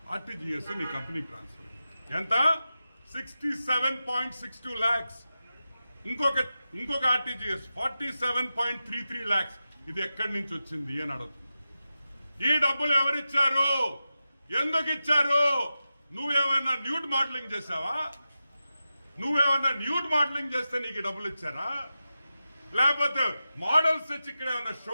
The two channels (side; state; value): both; inverted; correlation -0.92